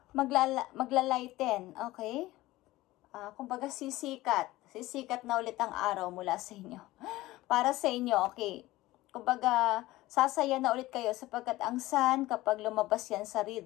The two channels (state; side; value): quieter; right; 17.8 dB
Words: magla-lighten. Okay? Kumbaga, sisikat. Sisikat na ulit ang araw mula sa inyo. Para sa inyo, okay? Kumbaga, sasaya na ulit kayo sapagkat ang sun, kapag lumabas yan sa